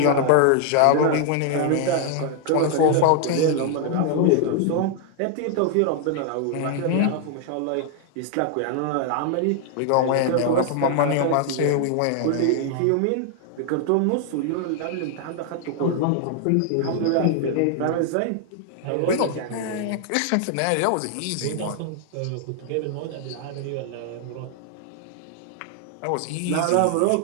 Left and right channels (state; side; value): different; both; correlation 0.00